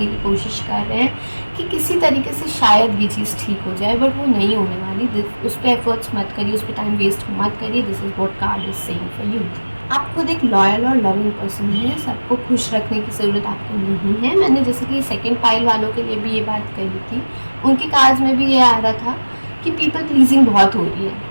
की कोशिश कर रहे हैं कि किसी तरीके से शायद ये चीज़ ठीक हो जाए, बट वो नहीं होने वाली। उस पर एफर्ट्स मत करिए, उस पर टाइम वेस्ट मत करिए। This is what card is saying for you. आप खुद एक लॉयल और लविंग पर्सन है, सबको खुश रखने की ज़रूरत आपको नहीं है। मैंने जैसे कि सेकंड पाइल वालों के लिए भी ये बात कही थी, उनके कार्ड्स में भी ये आ रहा था कि पीपल प्लीजिंग बहुत हो रही है।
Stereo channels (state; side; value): inverted; both; correlation -1.00